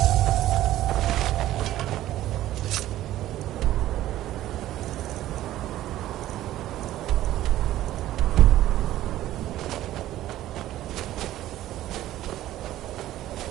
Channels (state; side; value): quieter; left; 14.1 dB